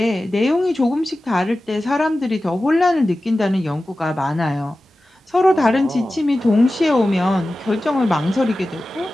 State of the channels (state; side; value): normal; both; correlation 0.95